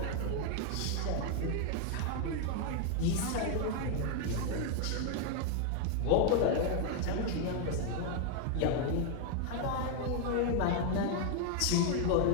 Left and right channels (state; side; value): different; both; correlation 0.01